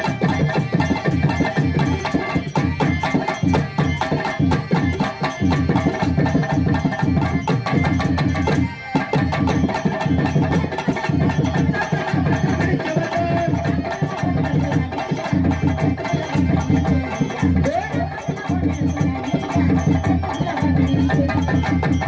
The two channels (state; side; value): identical; both; correlation 1.00